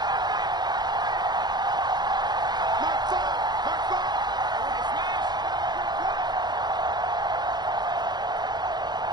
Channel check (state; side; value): late; left; 0.21 ms